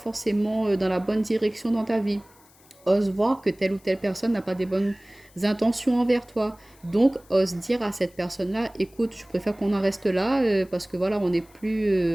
dans la bonne direction dans ta vie. Ose voir que telle ou telle personne n'a pas des bonnes intentions envers toi. Donc, ose dire à cette personne-là, écoute, je préfère qu'on en reste là parce que voilà, on n'est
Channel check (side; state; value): left; noise; hiss, 28 dB below the sound